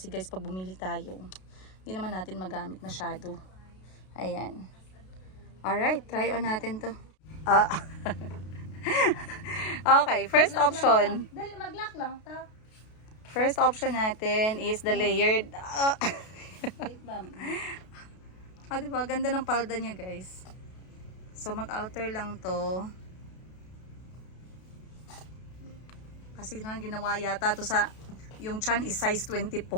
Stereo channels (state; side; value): late; right; 32 ms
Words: guys, pag bumili tayo, hindi naman natin magamit masyado. Ayan. Alright, try on natin to. Okay, first option. Dali, mag-lock lang ta. First option natin is the layered. Wait, ma'am. Diba? Ganda ng palda niya, guys. So, mag-alter lang to. Kasi ginawa yata to sa, yung chan is size 24.